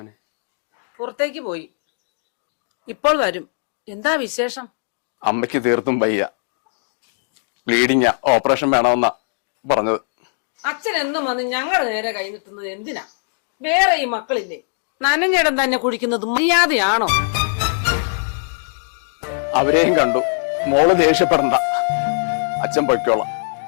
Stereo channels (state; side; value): silent; right; digital silence